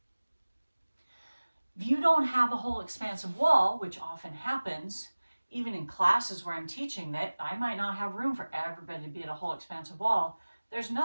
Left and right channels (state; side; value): inverted; both; correlation -1.00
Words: If you don't have a whole expansive wall, which often happens, even in classes where I'm teaching that I might not have room for everybody to be at a whole expansive wall, there's